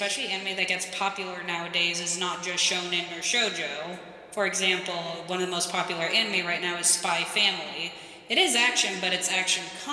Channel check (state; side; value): identical; both; correlation 1.00